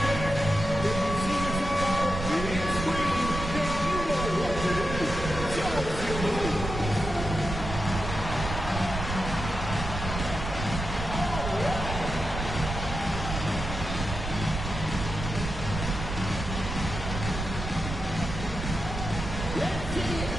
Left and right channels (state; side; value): noise; right; rumble, 5 dB below the sound